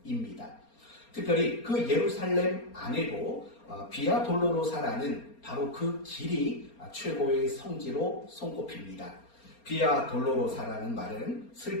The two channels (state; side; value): late; right; 4.3 ms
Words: 특별히 그 예루살렘 안에도 비아 돌로로사라는 바로 그 길이 최고의 성지로 손꼽힙니다. 비아 돌로로사라는 말은